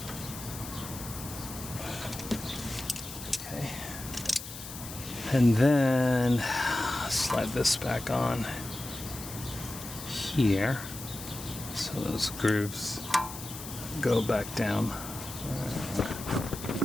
And then slide this back on here. So those grooves go back down.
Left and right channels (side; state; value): left; noise; hiss, 11 dB below the sound